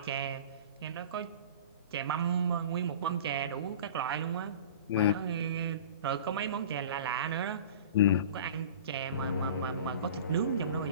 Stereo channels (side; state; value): both; inverted; correlation -0.38